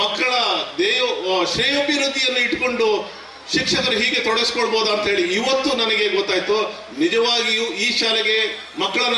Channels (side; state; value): both; identical; correlation 1.00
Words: ಮಕ್ಕಳ ಶ್ರೇಯೋಭಿವೃದ್ಧಿಯನ್ನು ಇಟ್ಕೊಂಡು ಶಿಕ್ಷಕರು ಹೀಗೆ ತೊಡಗಿಸ್ಕೊಳ್ಬೋದಾ ಅಂತ ಹೇಳಿ ಇವತ್ತು ನನಗೆ ಗೊತ್ತಾಯ್ತು. ನಿಜವಾಗಿಯೂ ಈ ಶಾಲೆಗೆ ಮಕ್ಕಳನ್ನ